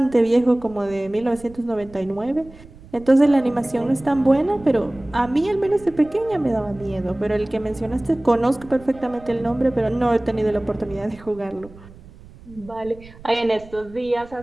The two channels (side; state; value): right; noise; rumble, 21 dB below the sound